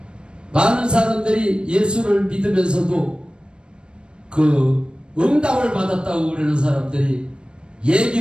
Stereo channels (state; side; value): late; left; 0.055 ms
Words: 많은 사람들이 예수를 믿으면서도 그 응답을 받았다고 그러는 사람들이